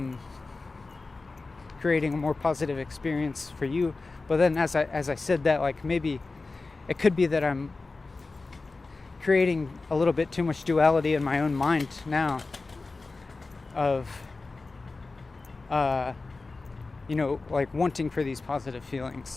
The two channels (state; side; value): quieter; right; 3.7 dB